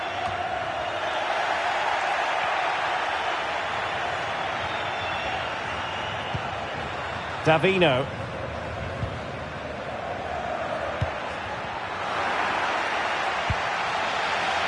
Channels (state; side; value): identical; both; correlation 1.00